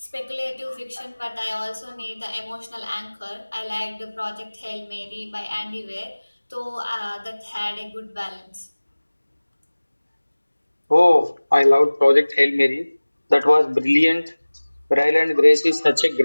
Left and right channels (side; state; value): both; inverted; correlation -1.00